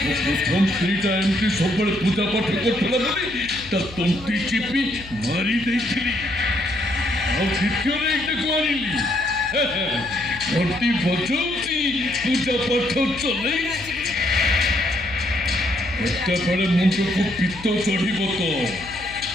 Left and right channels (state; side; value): noise; left; hum, 17 dB below the sound